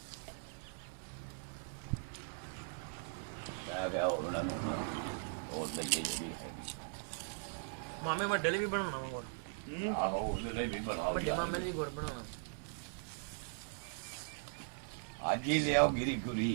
ਮੈਂ ਕਿਹਾ ਉਹਨਾਂ ਨੂੰ ਹੋਰ ਲੱਗੇ ਜਿਹੜੀ ਹੈਗੀ ਮਾਮੇ ਵੱਡੇ ਲਈ ਵੀ ਬਣਾਉਣਾ ਵਾ ਗੁੜ। ਆਹੋ ਉਹਦੇ ਲਈ ਵੀ ਬਣਾਓ ਵੱਡੇ ਮਾਮੇ ਲਈ ਗੁੜ ਬਣਾਉਣਾ। ਅੱਜ ਹੀ ਲਿਆਓ ਗਿਰੀ ਗੁਰੀ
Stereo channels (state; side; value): silent; left; 51 dB below the other